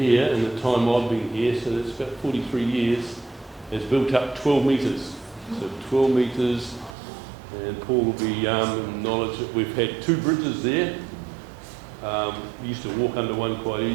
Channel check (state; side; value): drops out; left; at 7.0 s